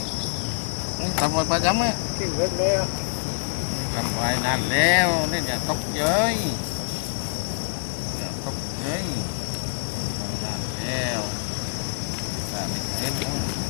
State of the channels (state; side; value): silent; right; digital silence